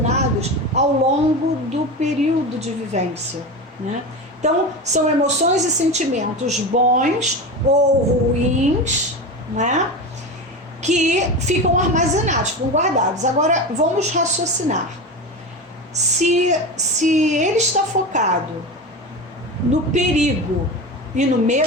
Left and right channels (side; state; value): both; normal; correlation 0.24